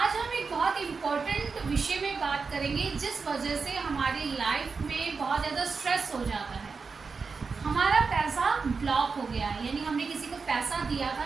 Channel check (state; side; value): quieter; left; 4.9 dB